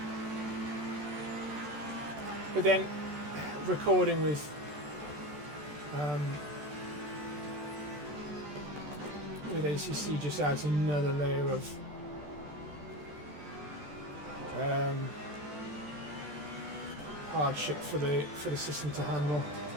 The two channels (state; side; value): late; left; 14 ms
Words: But then recording with ACC just adds another layer of hardship for the system to handle.